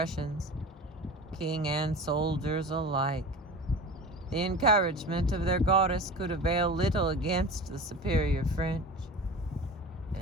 king and soldiers alike, the encouragement of their goddess could avail little against the superior French.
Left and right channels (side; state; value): both; normal; correlation 0.34